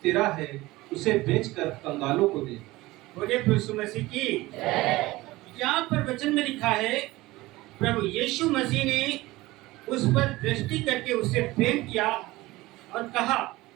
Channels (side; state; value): left; quieter; 19.3 dB